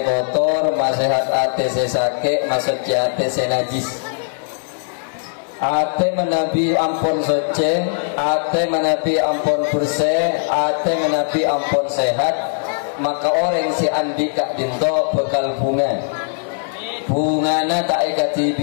kotor masehat ate se sakit masuk ate se najis ate menabi ampun suci ate menabi ampun bersih ate menabi ampun sehat maka orang si andi kak dinto bekal bungana tak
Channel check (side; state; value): right; silent; digital silence